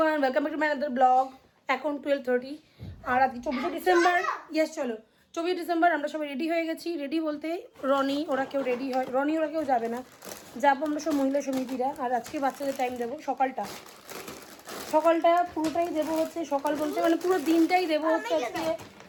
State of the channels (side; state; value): both; identical; correlation 1.00